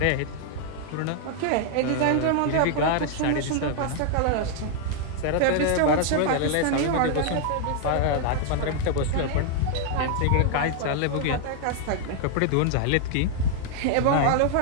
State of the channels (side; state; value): both; different; correlation 0.00